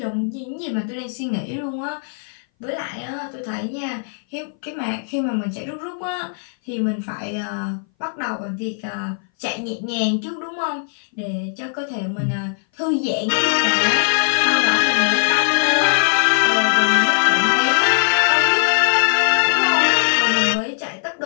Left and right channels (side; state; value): right; silent; 60 dB below the other